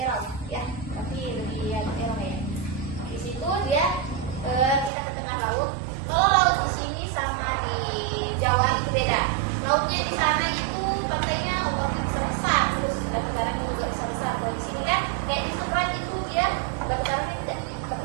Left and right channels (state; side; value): drops out; left; at 4.9 s